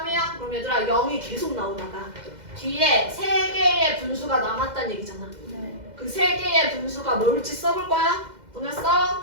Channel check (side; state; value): left; late; 2.0 ms